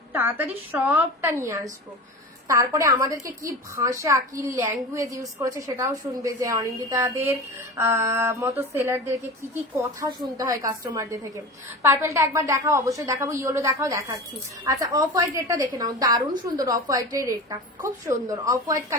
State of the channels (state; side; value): normal; both; correlation 0.31